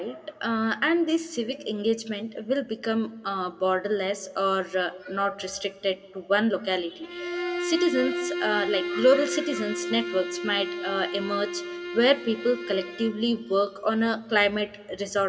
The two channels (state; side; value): identical; both; correlation 1.00